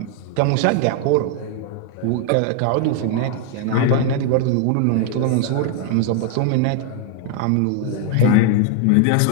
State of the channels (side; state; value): both; different; correlation 0.00